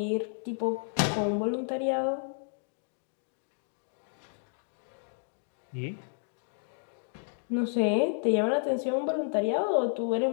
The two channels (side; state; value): right; silent; digital silence